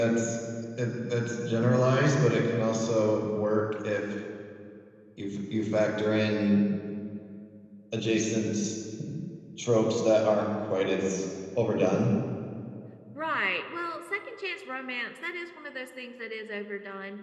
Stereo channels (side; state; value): both; identical; correlation 1.00